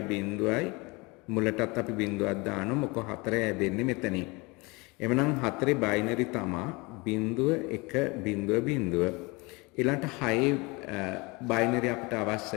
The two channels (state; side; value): quieter; right; 26.0 dB